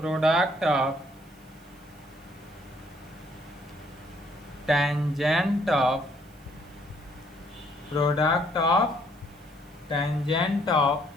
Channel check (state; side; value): noise; right; hiss, 29 dB below the sound